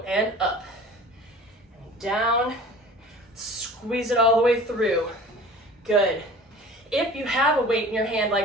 and up, and down, squeeze it all the way through. Good. If you have a weight in your hand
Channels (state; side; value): normal; both; correlation 0.43